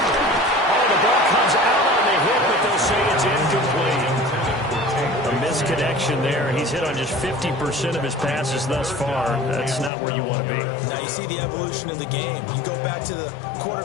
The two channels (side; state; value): right; drops out; at 9.9 s